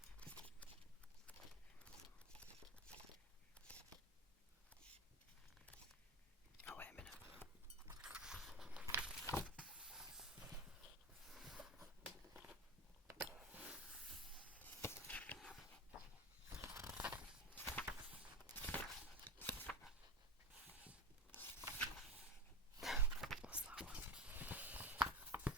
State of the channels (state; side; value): normal; both; correlation 0.24